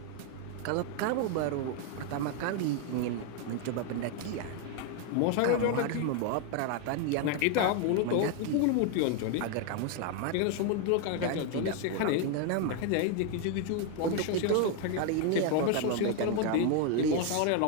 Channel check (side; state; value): both; different; correlation 0.01